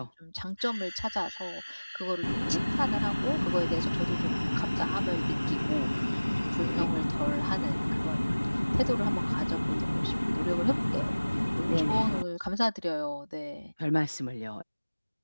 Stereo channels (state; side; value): inverted; both; correlation -1.00